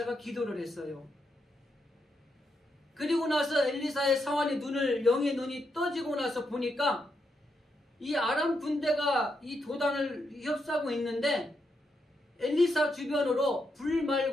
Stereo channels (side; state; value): both; normal; correlation 0.82